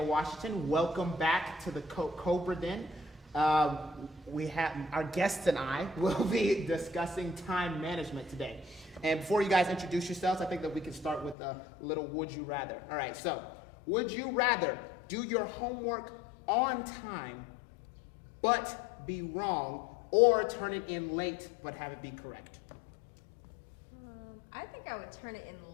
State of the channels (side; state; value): right; drops out; at 11.4 s